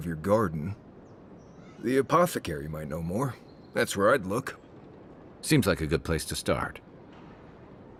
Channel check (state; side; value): identical; both; correlation 1.00